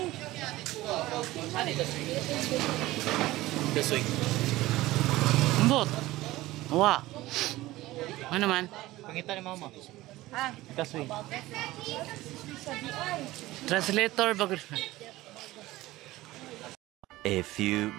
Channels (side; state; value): left; quieter; 17.7 dB